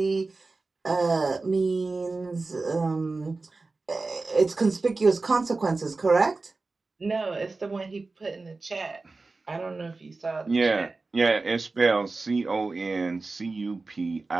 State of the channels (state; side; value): quieter; left; 3.7 dB